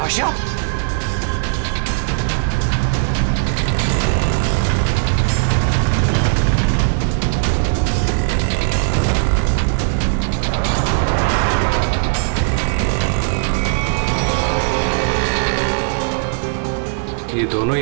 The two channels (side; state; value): left; silent; digital silence